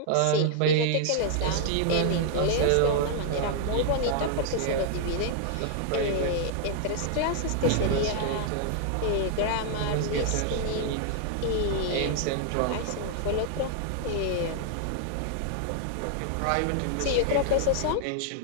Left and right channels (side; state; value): both; different; correlation -0.01